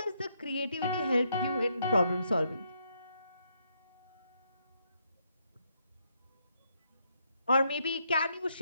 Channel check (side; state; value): both; inverted; correlation -0.76